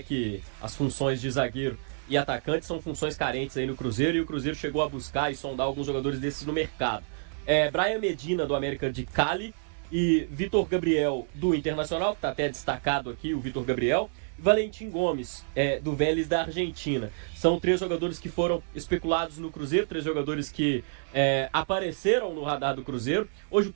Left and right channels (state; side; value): silent; left; digital silence